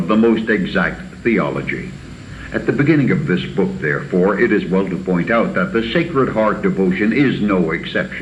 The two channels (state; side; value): identical; both; correlation 1.00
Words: the most exact theology. At the beginning of this book, therefore, it is well to point out that the Sacred Heart devotion is no